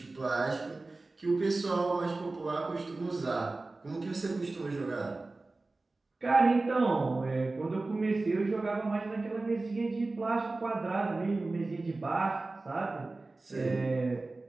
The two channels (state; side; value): quieter; left; 3.3 dB